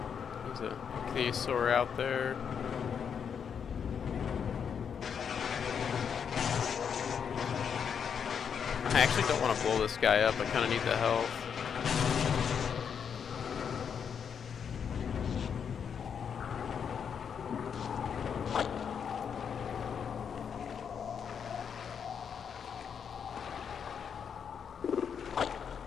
There's a Theosaur out there. I actually don't want to blow this guy up. I kind of need the health.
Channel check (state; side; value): quieter; right; 7.3 dB